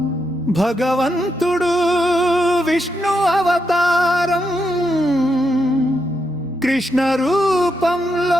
భగవంతుడు విష్ణు అవతారం కృష్ణ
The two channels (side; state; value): both; normal; correlation 0.82